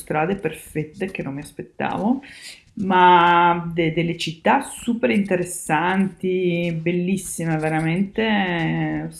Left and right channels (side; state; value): both; identical; correlation 1.00